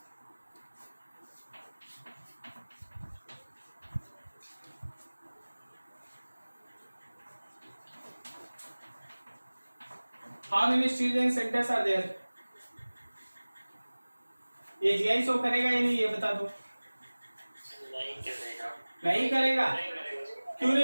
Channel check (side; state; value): both; inverted; correlation -1.00